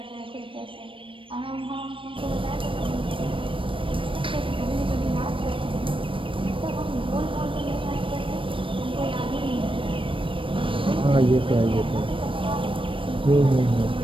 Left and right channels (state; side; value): late; left; 0.25 ms